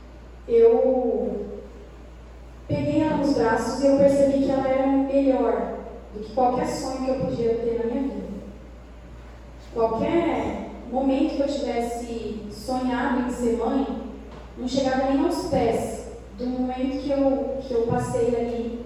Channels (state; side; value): identical; both; correlation 1.00